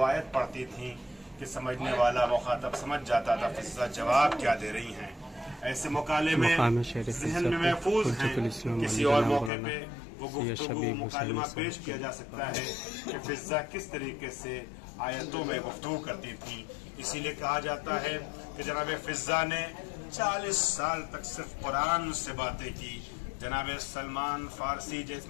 आयत पढ़ती थी कि समझने वाला मुखातब समझ जाता था फिज़्ज़ा जवाब क्या दे रही हैं। ऐसे मुकाले में ज़हन में महफूज हैं। किसी और मौके पे वो गुफ्तगू मुकालमा पेश किया जा सकता है कि फिज़्ज़ा किस तरीके से आयतों में गुफ्तगू करती थी। इसीलिए कहा जाता है कि जनाब फिज़्ज़ा ने 40 साल तक सिर्फ कुरान से बातें की। जनाब सलमान फारसी,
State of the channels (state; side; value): drops out; right; at 9.5 s